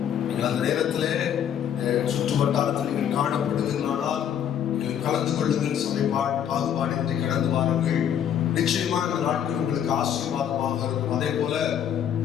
நீங்கள் அந்த நேரத்திலே சுற்று வட்டாரத்தில் நீங்கள் காணப்படுவீர்களானால் நீங்கள் கலந்து கொள்ளுங்கள். சபை பாகுபாடின்றி கடந்து வாருங்கள். நிச்சயமாக இந்த நாட்கள் உங்களுக்கு ஆசீர்வாதமாக இருக்கும். அதே போல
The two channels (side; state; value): right; quieter; 9.3 dB